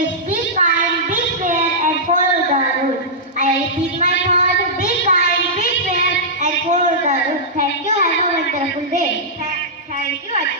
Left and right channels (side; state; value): both; normal; correlation -0.13